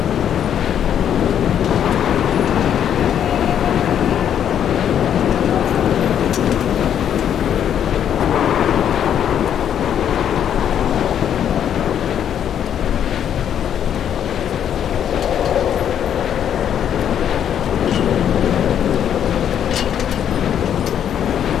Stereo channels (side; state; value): right; quieter; 9.4 dB